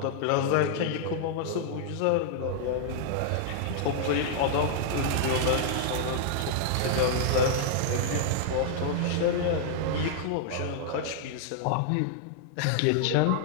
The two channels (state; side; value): different; both; correlation -0.01